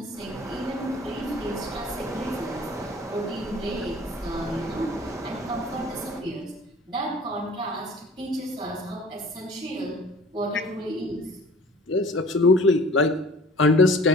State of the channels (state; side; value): normal; both; correlation 0.48